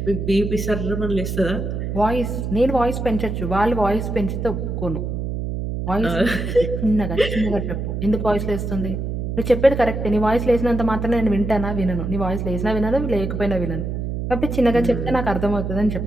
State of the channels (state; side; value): noise; right; hum, 3 dB below the sound